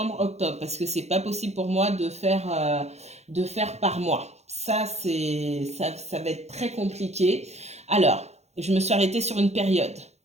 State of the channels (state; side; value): late; left; 0.32 ms